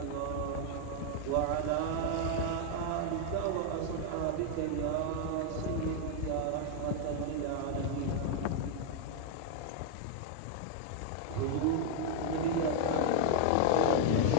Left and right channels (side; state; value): both; different; correlation 0.00